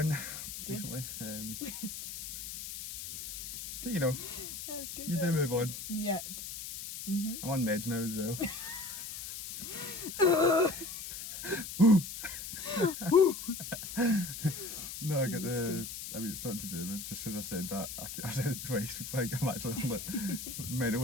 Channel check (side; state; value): left; noise; hiss, 8 dB below the sound